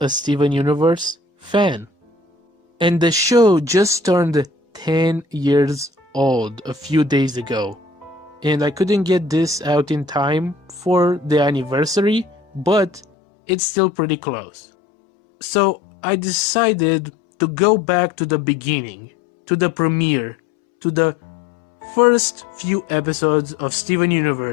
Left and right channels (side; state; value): right; drops out; at 13.1 s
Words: Steven Universe fan. And the show just turned 10 years old a few days ago. And I couldn't get this out in time for the anniversary, but it's still pretty close. So I decided to go back to the beginning, to the premiere, to the first few episodes of Steven